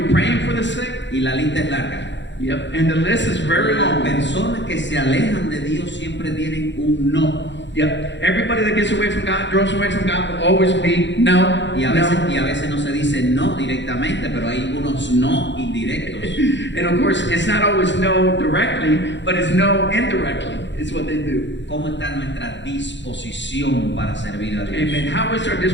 be praying for the sick? Y la lista es larga. Yep. And the list is very Las long. personas que se alejan de Dios siempre tienen un no. Yep. Everybody that gets away from God, draws away from God, will always be no. Y a veces no se dice no directamente, pero hay unos no indirectos. And of course, it's not always no directly, but it's no indirectly. It's what they do. ¿Cómo está nuestra disposición para servir a Dios? Amen. How is our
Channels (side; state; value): right; late; 0.53 ms